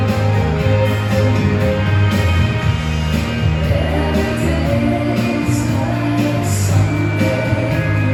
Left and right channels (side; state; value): both; identical; correlation 1.00